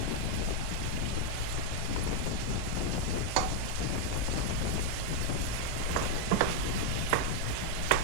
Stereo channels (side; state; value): both; different; correlation 0.00